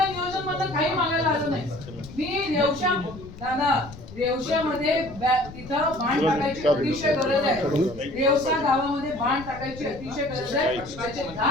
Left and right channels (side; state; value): left; noise; rumble, 15 dB below the sound